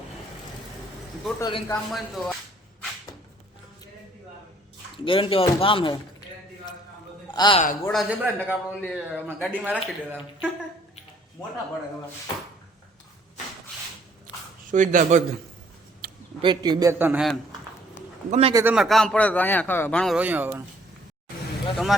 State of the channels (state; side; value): normal; both; correlation 0.62